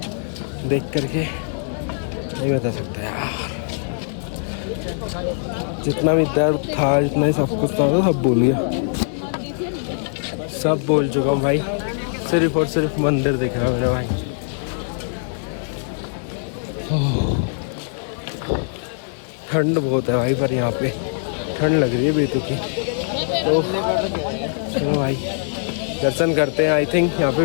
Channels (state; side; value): silent; right; digital silence